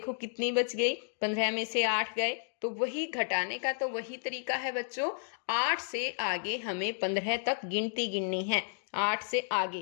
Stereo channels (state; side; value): silent; right; digital silence